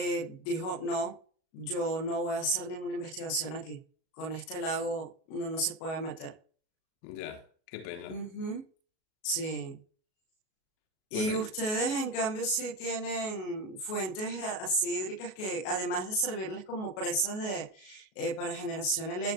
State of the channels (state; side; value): late; right; 37 ms